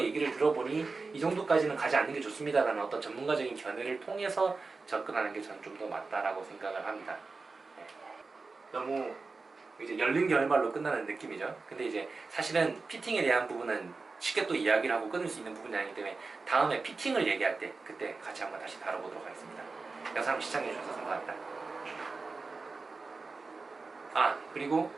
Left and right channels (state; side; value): quieter; left; 4.0 dB